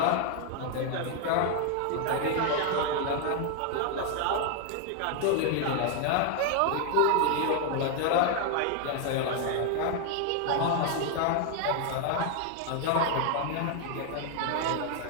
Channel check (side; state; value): both; different; correlation 0.00